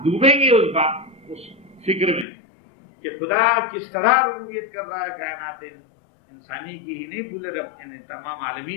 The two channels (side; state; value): right; drops out; at 2.2 s